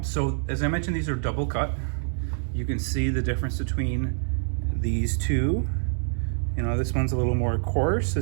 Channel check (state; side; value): silent; left; 61 dB below the other